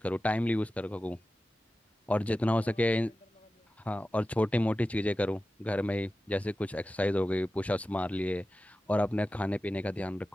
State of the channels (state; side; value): normal; both; correlation 0.94